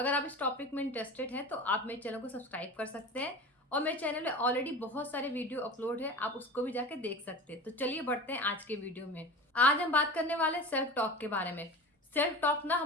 आप इस टॉपिक में इंटरेस्टेड हैं तो आप मेरे चैनल को सब्सक्राइब कर सकते हैं और मेरे चैनल में ऑलरेडी बहुत सारे वीडियो अपलोड है, आप उसको भी जाके देख सकते हैं। तो चलिए बढ़ते हैं आज के वीडियो में। आज हम बात करने वाले हैं सेल्फ टॉक के बारे में। सेल्फ टॉक ना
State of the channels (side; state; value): both; normal; correlation 0.33